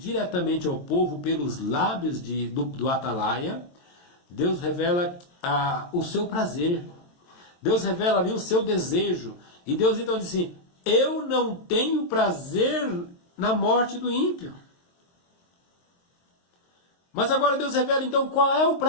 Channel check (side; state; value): right; late; 23 ms